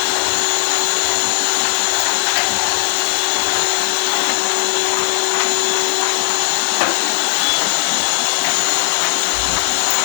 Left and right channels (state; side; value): silent; right; 61 dB below the other